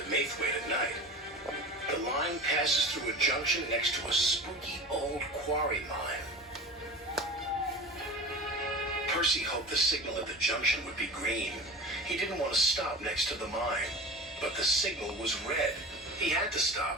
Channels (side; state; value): both; normal; correlation 0.34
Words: Maithwaite at night. The line passes through a junction next to a spooky old quarry mine. Percy hoped the signal at the junction would be green. He didn't want to stop next to the mine, but the signal was red. He had to